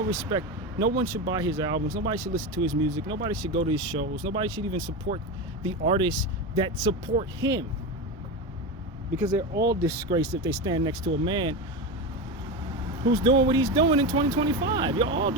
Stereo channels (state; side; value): normal; both; correlation 0.19